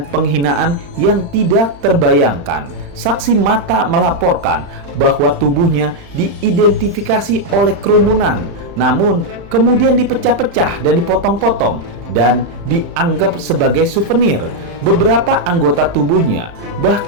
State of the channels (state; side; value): late; left; 35 ms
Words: penghinaan yang tidak terbayangkan. Saksi mata melaporkan bahwa tubuhnya diidentifikasi oleh kerumunan, namun kemudian dipecah-pecah dan dipotong-potong dan dianggap sebagai souvenir. Beberapa anggota tubuhnya